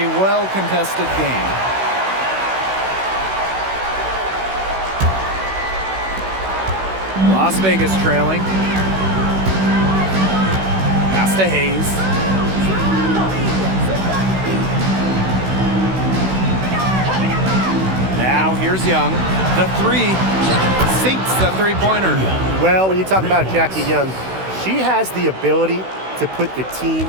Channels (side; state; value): left; late; 16 ms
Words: well-contested game. Las Vegas trailing. Pass to Hayes. Now here's Young. The 3 sinks the three-pointer. Well, when you talk about Jackie Young, she has the ability to put the team